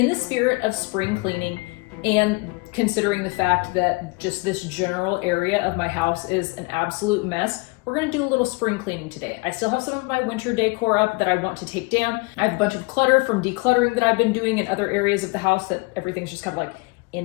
the spirit of spring cleaning, and considering the fact that just this general area of my house is an absolute mess, we're gonna do a little spring cleaning today. I still have some of my winter decor up that I want to take down. I have a bunch of clutter from decluttering that I've been doing in other areas of the house that everything's just kind of like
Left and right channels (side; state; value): right; quieter; 26.9 dB